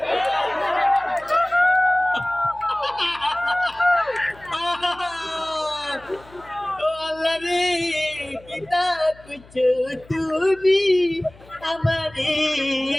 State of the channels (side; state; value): left; noise; hum, 24 dB below the sound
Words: ও আল্লাহ রে কিতা কুছো তুমি আমারে